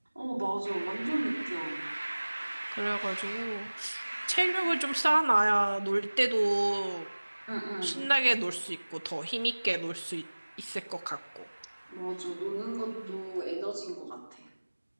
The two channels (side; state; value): both; inverted; correlation -1.00